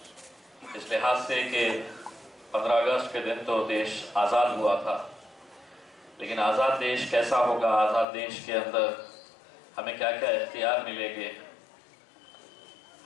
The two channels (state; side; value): drops out; right; at 8.1 s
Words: इस लिहाज से कि 15 अगस्त के दिन तो देश आज़ाद हुआ था, लेकिन आज़ाद देश कैसा होगा, आज़ाद देश के अंदर हमें क्या क्या इख्तियार मिलेंगे,